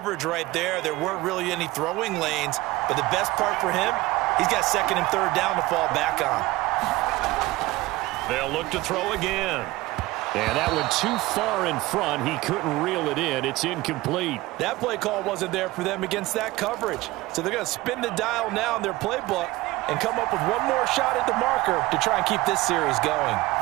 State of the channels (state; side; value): quieter; left; 19.5 dB